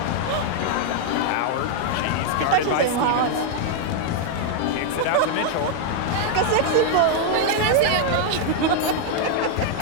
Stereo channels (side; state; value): both; different; correlation 0.00